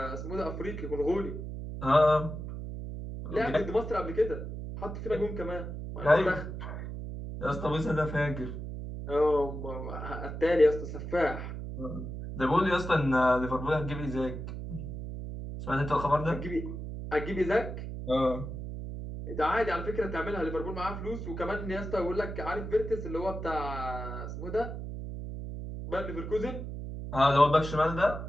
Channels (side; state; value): right; noise; hum, 7 dB below the sound